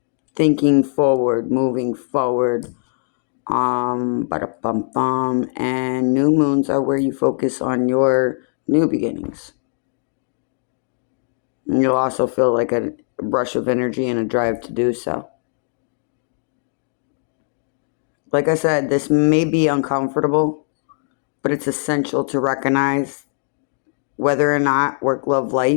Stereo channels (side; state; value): right; silent; digital silence